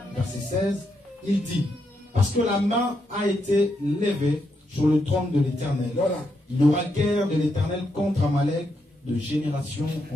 Verset 16, il dit, Parce que la main a été levée sur le trône de l'Éternel. Voilà. Il y aura guerre de l'Éternel contre Amalek de génération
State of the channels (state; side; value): normal; both; correlation 0.81